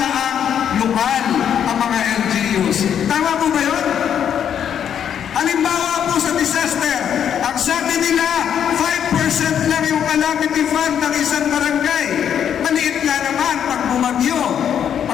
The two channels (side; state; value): right; quieter; 8.8 dB